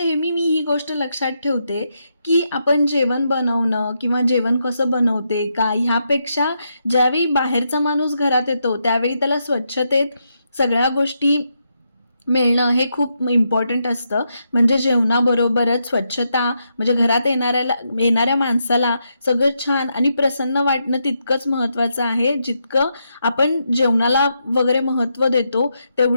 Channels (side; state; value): both; inverted; correlation -0.82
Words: मी ही गोष्ट लक्षात ठेवते की आपण जेवण बनवणं किंवा जेवण कसं बनवते का, ह्यापेक्षा ज्यावेळी बाहेरचा माणूस घरात येतो त्यावेळी त्याला स्वच्छतेत सगळ्या गोष्टी मिळणं हे खूप इम्पॉर्टंट असतं. म्हणजे जेवणाबरोबरच स्वच्छता, म्हणजे घरात येणाऱ्या माणसाला सगळं छान आणि प्रसन्न वाटणं तितकंच महत्त्वाचं आहे. जितकं आपण जेवणाला वगैरे महत्त्व देतो,